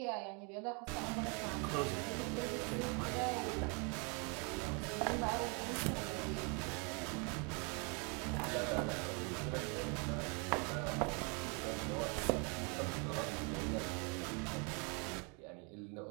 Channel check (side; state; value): left; quieter; 34.1 dB